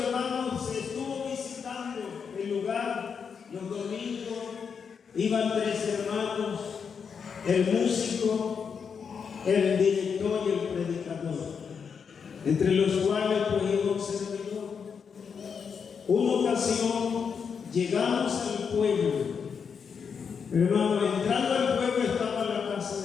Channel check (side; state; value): right; quieter; 6.4 dB